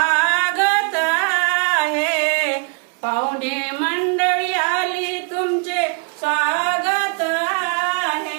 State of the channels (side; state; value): left; quieter; 35.8 dB